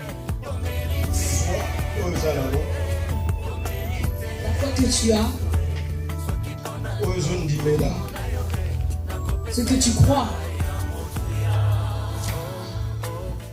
La foi que tu as, ce que tu crois,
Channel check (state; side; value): identical; both; correlation 1.00